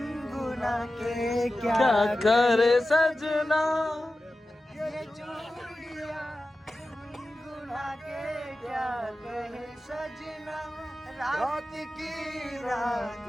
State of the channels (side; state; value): both; normal; correlation 0.94